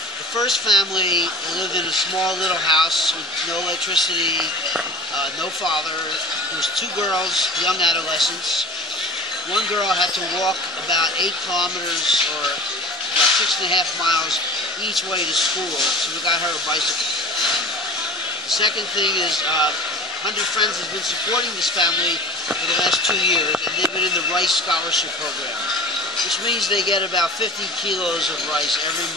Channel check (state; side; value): normal; both; correlation 0.38